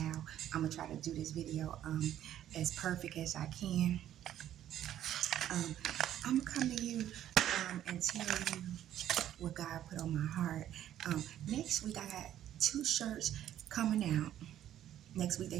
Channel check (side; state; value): left; quieter; 11.6 dB